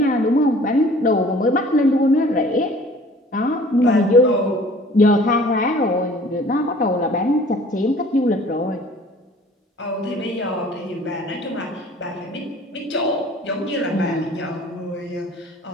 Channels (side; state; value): both; normal; correlation 0.51